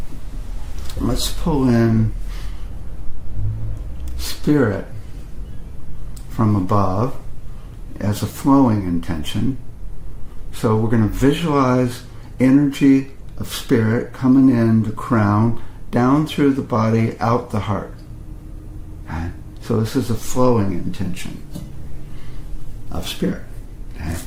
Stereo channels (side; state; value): both; identical; correlation 1.00